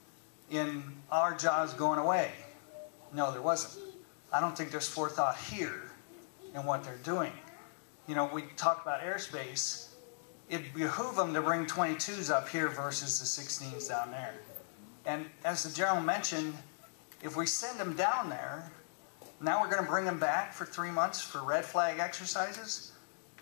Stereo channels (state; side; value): silent; right; digital silence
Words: in our jobs going away? No, there wasn't. I don't think there's forethought here in what they're doing. You know, we talk about airspace. It'd behoove them to bring 22s up here versus the 16s down there. And as the General mentioned, if we send them down there, now we're going to bring them back for 3 months for red flag exercises.